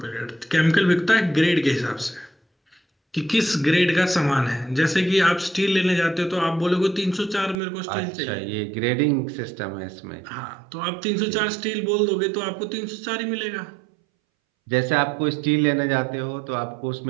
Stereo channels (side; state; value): left; drops out; at 7.6 s